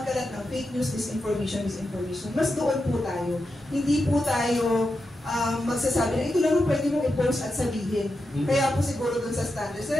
ng fake news, misinformation. Mas doon po tayo. Hindi po tayo magsasabi na ito lang pwede mong i-post at sabihin. Kaya po siguro doon sa standards.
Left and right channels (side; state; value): both; normal; correlation 0.88